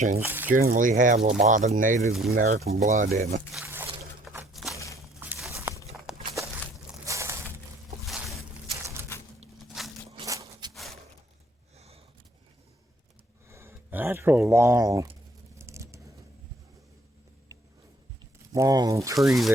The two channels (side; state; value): both; normal; correlation 0.62